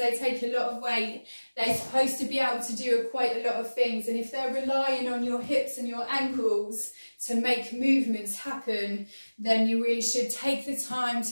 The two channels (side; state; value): both; inverted; correlation -1.00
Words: take a lot of weight. They're supposed to be able to do quite a lot of things, and if they're relying on your hips and your ankles to make movements happen, then you really should take the time